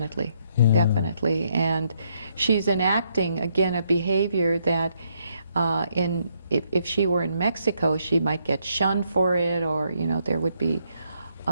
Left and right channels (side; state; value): both; inverted; correlation -0.74